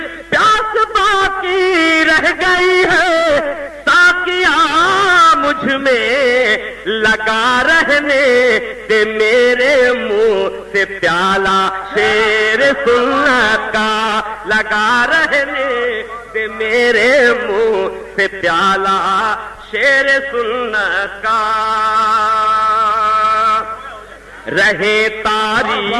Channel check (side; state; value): both; identical; correlation 1.00